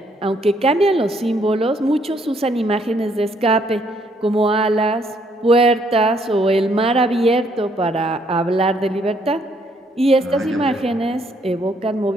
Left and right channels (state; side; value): normal; both; correlation 0.69